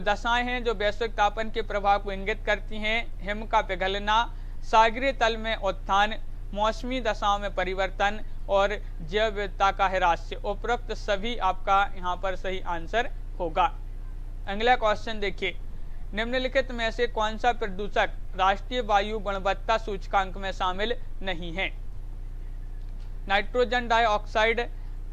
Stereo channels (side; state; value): both; identical; correlation 1.00